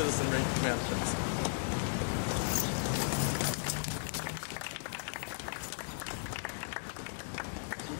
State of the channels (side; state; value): right; silent; digital silence